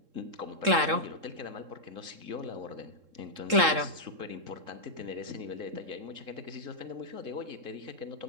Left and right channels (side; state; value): left; late; 3.7 ms